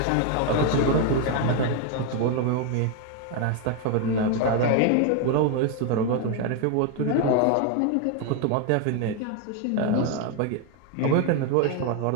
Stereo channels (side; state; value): both; different; correlation 0.01